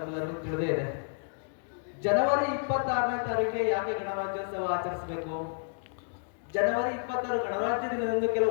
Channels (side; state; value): right; silent; digital silence